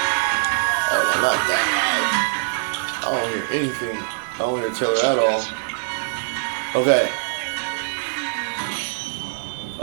Oh, not that. I don't hear anything. I don't hear Taylor at all. Okay.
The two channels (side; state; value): left; silent; 64 dB below the other